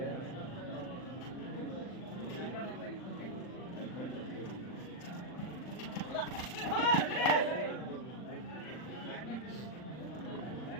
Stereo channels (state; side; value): late; right; 39 ms